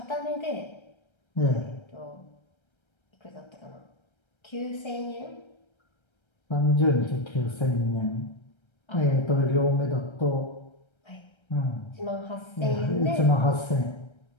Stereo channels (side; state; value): right; late; 1.3 ms